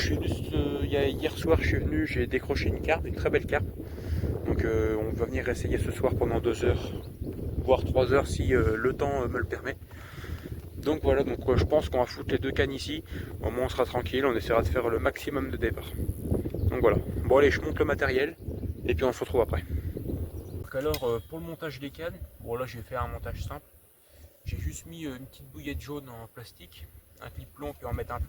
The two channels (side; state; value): both; identical; correlation 1.00